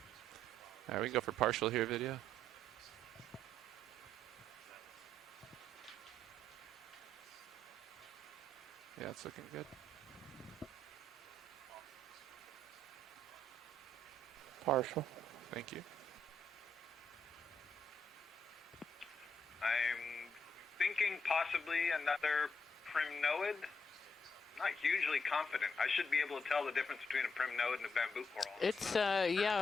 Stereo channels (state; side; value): normal; both; correlation 0.77